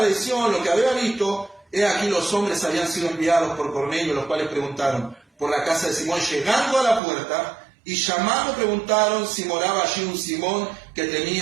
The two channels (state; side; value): drops out; left; at 7.0 s